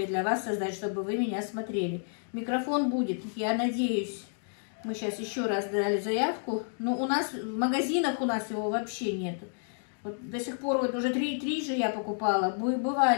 для вас создать, чтобы вы меня смотрели. Микрофон будет, я надеюсь. Мы сейчас еще раз дали заявку. Но у нас в магазинах у нас его вообще нет. Вот до сих пор вот уже три же я покупала.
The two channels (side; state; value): right; silent; digital silence